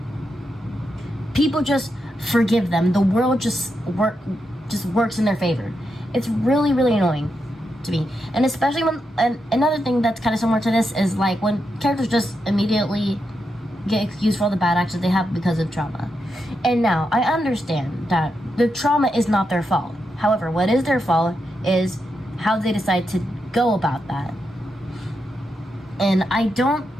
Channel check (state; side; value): normal; both; correlation 0.85